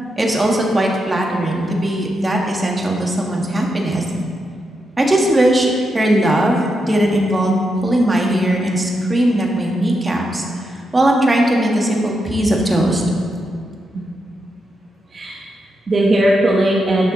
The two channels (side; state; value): both; normal; correlation 0.84